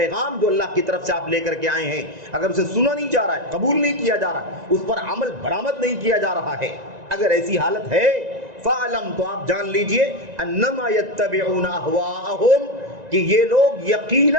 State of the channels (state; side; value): late; left; 1.9 ms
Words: جو اللہ کی طرف سے آپ لے کر کے آئے ہیں، اگر اسے سنا نہیں جا رہا ہے، قبول نہیں کیا جا رہا، اس پر عمل برآمد نہیں کیا جا رہا ہے، اگر ایسی حالت ہے، فَاعْلَمْ تو آپ جان لیجئے أَنَّمَا يَتَّبِعُونَ أَهْوَاءَهُمْ کہ یہ لوگ